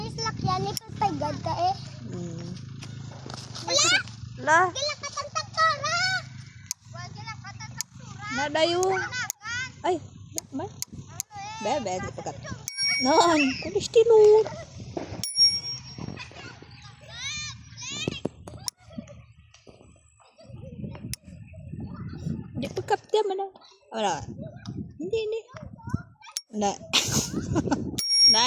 lakyan, ipagpagad ka eh. Wala! Lah, Kailan ka tagtaktora? Wala ka tagtaktora. nadayo. Ay, ba? Bebe, di pakat. Non, kulis tilur. Di pakat dia mana? Wala. Hindi. Na.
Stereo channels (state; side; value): identical; both; correlation 1.00